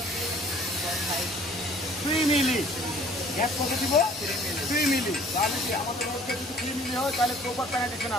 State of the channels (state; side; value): normal; both; correlation 0.54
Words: 3 মিলি। গ্যাপ কত দিব, 3 মিলি। তাহলে কি আমাদের মধ্যে যদি 3 মিলি হয় তাহলে প্রপার প্যানেটেশন